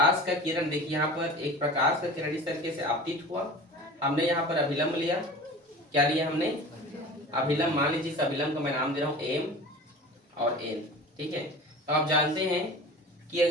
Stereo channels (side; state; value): both; normal; correlation 0.37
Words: का किरण, देखिए यहाँ पर एक प्रकाश का किरण इस तरीके से आपतित हुआ, हमने यहाँ पर अभिलंब लिया। क्या लिया हमने? अभिलंब। मान लीजिए इस अभिलंब का मैं नाम दे रहा हूँ एम और एन, ठीक है। तो आप जानते हैं कि